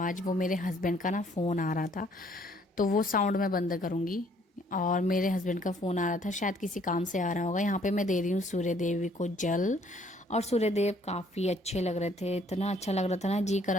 वो मेरे हस्बैंड का ना फ़ोन आ रहा था, तो वो साउंड मैं बंद करूँगी। और मेरे हस्बैंड का फ़ोन आ रहा था, शायद किसी काम से आ रहा होगा। यहाँ पे मैं दे रही हूँ सूर्य देवी को जल, और सूर्यदेव काफ़ी अच्छे लग रहे थे, इतना अच्छा लग रहा था ना, जी कर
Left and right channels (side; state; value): both; normal; correlation 0.63